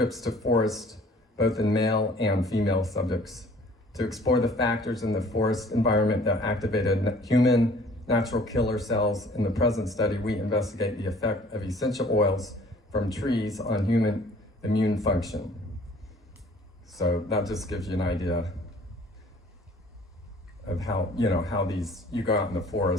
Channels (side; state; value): both; normal; correlation 0.53